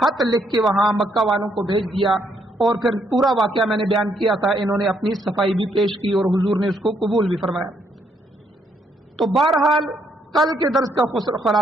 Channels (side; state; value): both; normal; correlation 0.73